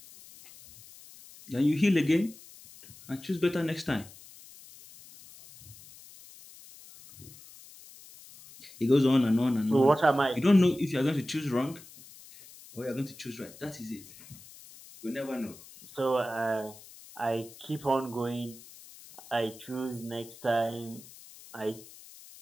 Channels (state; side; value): noise; left; hiss, 20 dB below the sound